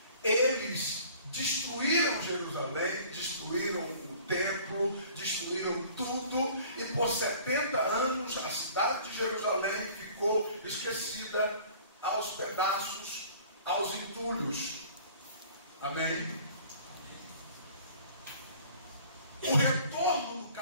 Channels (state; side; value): inverted; both; correlation -0.49